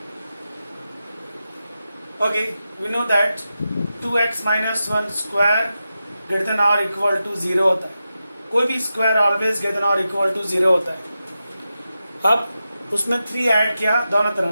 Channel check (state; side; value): inverted; both; correlation -0.91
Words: Okay, we know that 2x minus 1 square greater than or equal to 0 होता है. कोई भी square always greater than और equal to 0 होता है. अब उसमें 3 add किया दोनों